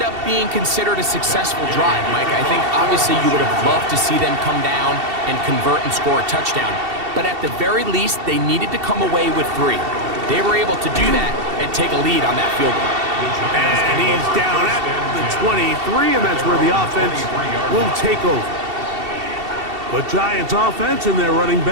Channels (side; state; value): left; late; 2.7 ms